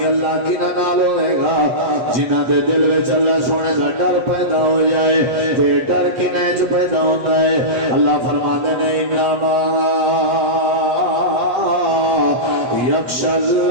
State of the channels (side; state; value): left; late; 8.1 ms